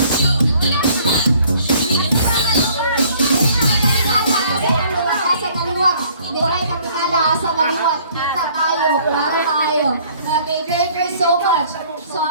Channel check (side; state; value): both; inverted; correlation -0.58